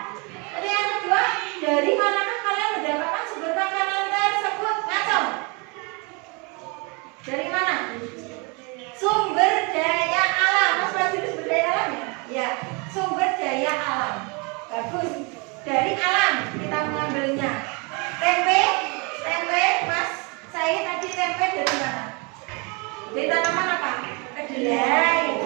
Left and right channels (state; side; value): quieter; left; 31.2 dB